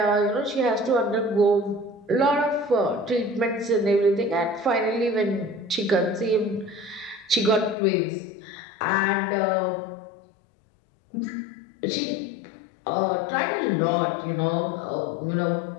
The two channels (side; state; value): right; drops out; at 7.8 s